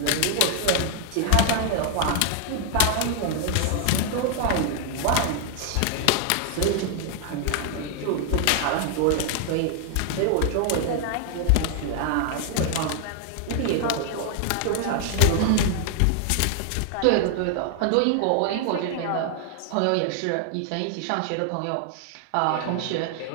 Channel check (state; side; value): different; both; correlation 0.00